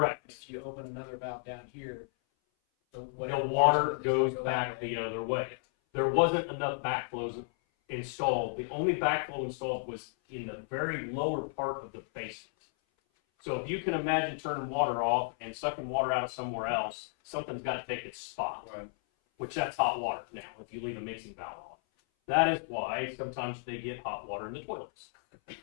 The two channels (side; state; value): right; silent; 56 dB below the other